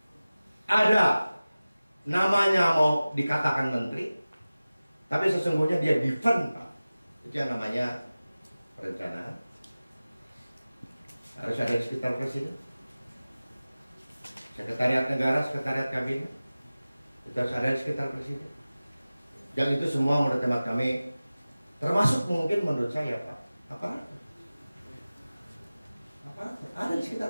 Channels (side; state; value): both; inverted; correlation -0.97